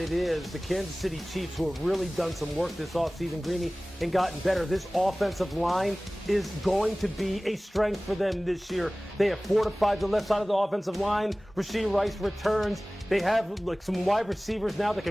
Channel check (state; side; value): normal; both; correlation 0.98